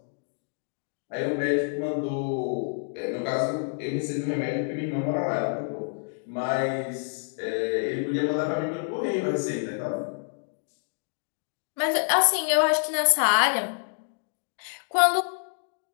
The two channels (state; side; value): silent; right; digital silence